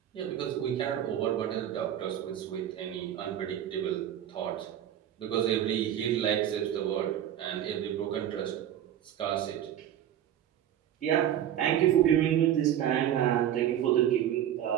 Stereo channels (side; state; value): left; quieter; 10.9 dB